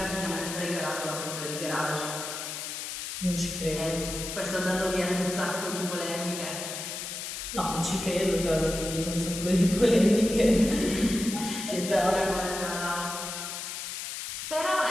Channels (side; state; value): left; noise; hiss, 6 dB below the sound